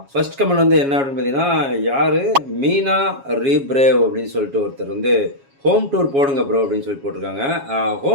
ஃபர்ஸ்ட் கமெண்ட் வந்து என்ன அப்படின்னு பார்த்தீங்கன்னா, யார் மீனா ரீப்ரேவ் அப்படின்னு சொல்லிட்டு ஒருத்தர் வந்து ஹோம் டூர் போடுங்க ப்ரோ அப்படின்னு சொல்லி போட்டிருக்காங்க.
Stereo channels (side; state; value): left; late; 7.3 ms